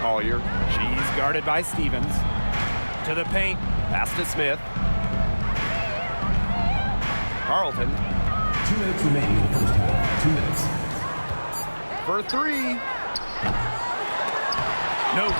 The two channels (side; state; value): both; inverted; correlation -1.00